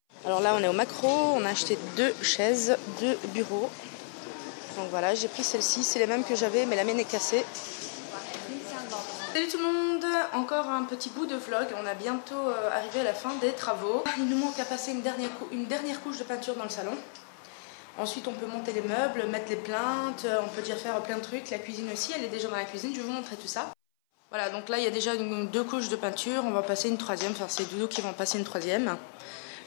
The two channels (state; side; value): silent; right; 57 dB below the other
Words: Alors là on est au Macro, on a acheté 2 chaises, 2 bureaux. Donc voilà, j'ai pris celle-ci, c'est les mêmes que j'avais mais la mienne est cassée. Salut tout le monde, encore un petit bout de vlog, on a bientôt arrivé à la fin des travaux. Il nous manque à passer une dernière couche de peinture dans le salon. Ensuite on peut monter les meubles, mettre les plaintes, on peut déjà faire plein de trucs. La cuisine aussi, elle est déjà dans la cuisine, je vais vous montrer tout ça. Voilà, donc là il y a déjà 2 couches de peinture, on va passer une 3e, enfin c'est Doudou qui va en passer une 3e.